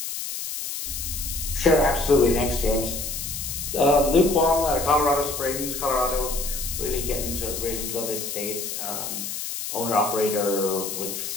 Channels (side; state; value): left; noise; hiss, 5 dB below the sound